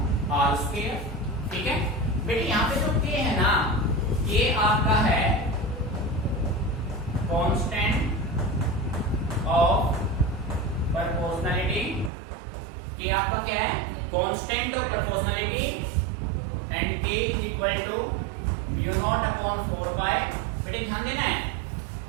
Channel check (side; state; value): left; drops out; at 12.1 s